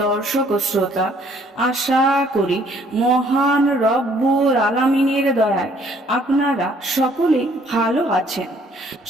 দর্শক ও শ্রোতা, আশা করি মহান রব্বুল আলামিনের দয়ায় আপনারা সকলেই ভালো আছেন।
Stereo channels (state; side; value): normal; both; correlation 0.62